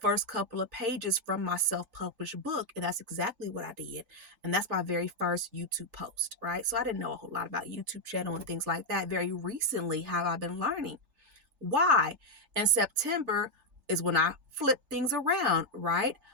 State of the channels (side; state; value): left; late; 3.3 ms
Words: couple of pages from my self-published book. And that's exactly what I did. And that's my very first YouTube post, right? So I didn't know a whole lot about YouTube channel and things like that. Very recently have I been learning. Why? In September is when I flipped things around, right?